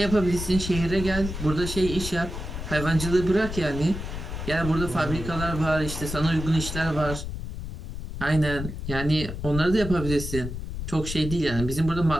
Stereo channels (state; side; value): noise; left; rumble, 7 dB below the sound